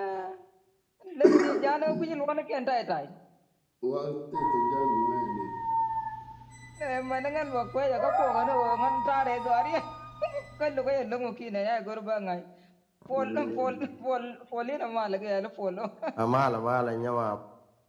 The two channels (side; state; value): both; identical; correlation 1.00